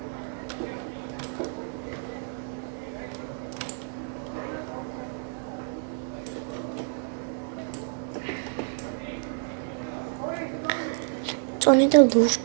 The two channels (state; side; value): silent; left; 59 dB below the other